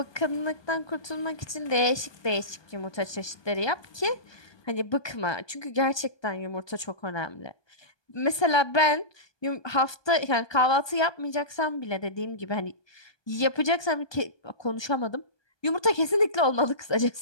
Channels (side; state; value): right; late; 1.2 ms